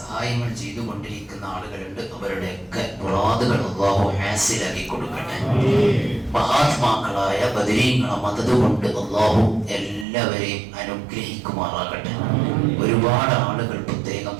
ചെയ്തുകൊണ്ടിരിക്കുന്ന ആളുകളുണ്ട്. അവരുടെയൊക്കെ മുറാദുകൾ അല്ലാഹു ഹാസിലാക്കി കൊടുക്കട്ടെ. മഹാത്മാക്കളായ ബദരീങ്ങളെ മദദ് കൊണ്ട് അല്ലാഹു എല്ലാവരെയും അനുഗ്രഹിക്കുമാറാകട്ടെ. ഒരുപാട് ആളുകൾ പ്രത്യേകം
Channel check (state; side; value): drops out; left; at 10.1 s